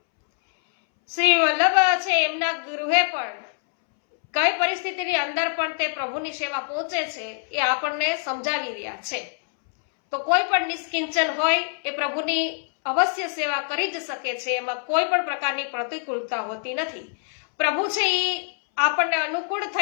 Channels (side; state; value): right; silent; 62 dB below the other